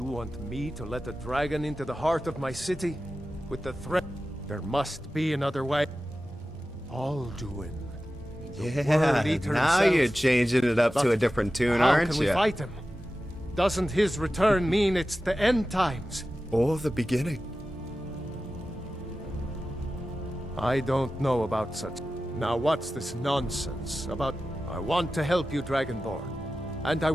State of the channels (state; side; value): normal; both; correlation 0.94